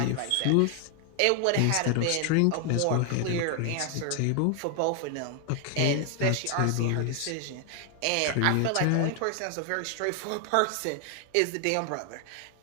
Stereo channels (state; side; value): different; both; correlation 0.00